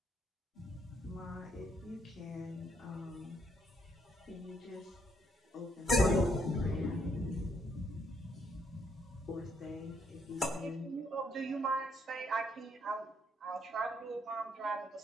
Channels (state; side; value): normal; both; correlation 0.71